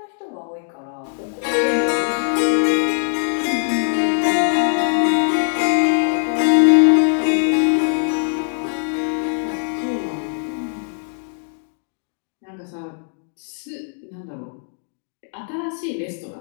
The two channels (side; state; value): right; silent; digital silence